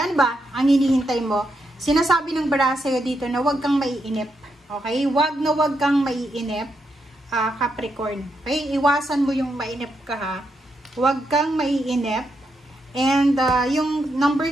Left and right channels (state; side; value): normal; both; correlation 0.82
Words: ba ang hinihintay mo? Sinasabi ng baraha sa'yo dito na huwag kang maiinip. Okay? Huwag kang maiinip, Capricorn. Okay? Iwasan mo yung mainip ka, ha? Huwag kang maiinip. And yung number